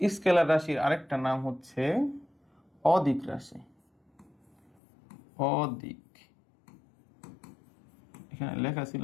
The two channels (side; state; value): right; drops out; at 4.7 s